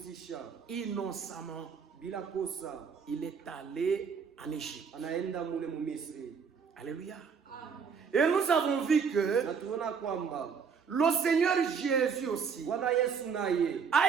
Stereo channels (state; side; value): quieter; left; 6.2 dB